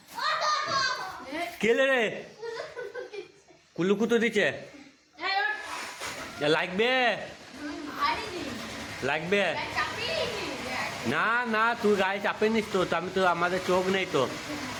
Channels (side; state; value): both; identical; correlation 1.00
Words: কেলে রে কুলুকুতো দিচ্ছে, লাগবে লাগবে না না, তুই গায়ে চাপে নিস তো, আমি তো আমাদের চোখ নেই তো,